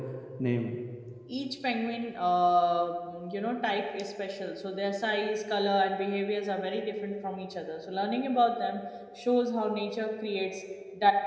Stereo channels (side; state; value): both; identical; correlation 1.00